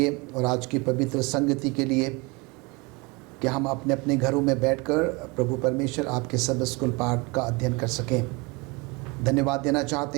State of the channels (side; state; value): left; quieter; 27.0 dB